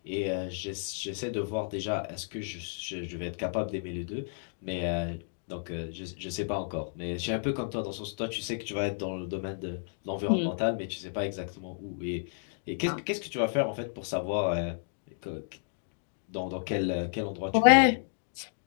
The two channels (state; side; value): silent; right; digital silence